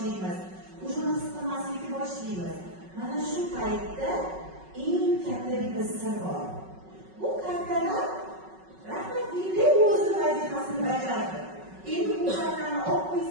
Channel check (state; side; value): late; left; 5.4 ms